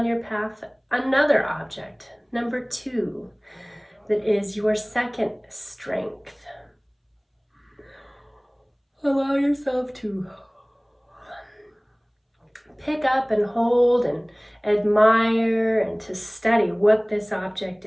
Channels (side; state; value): both; identical; correlation 1.00